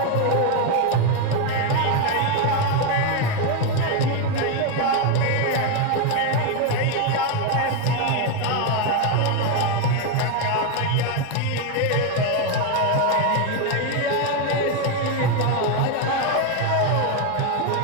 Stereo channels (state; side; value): different; both; correlation 0.02